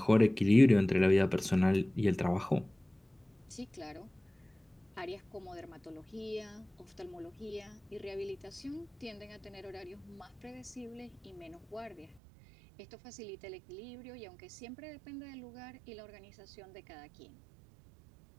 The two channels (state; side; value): drops out; left; at 12.2 s